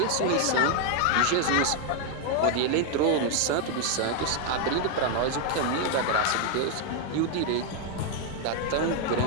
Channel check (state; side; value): different; both; correlation 0.00